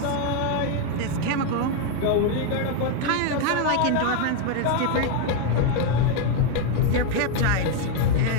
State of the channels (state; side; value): different; both; correlation 0.01